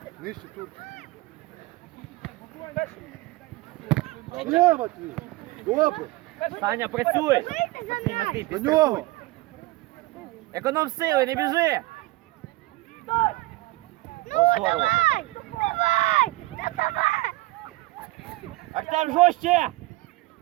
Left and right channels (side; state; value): left; quieter; 20.4 dB